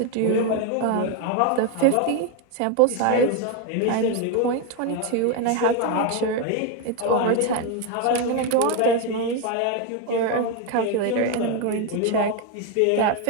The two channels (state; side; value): different; both; correlation 0.02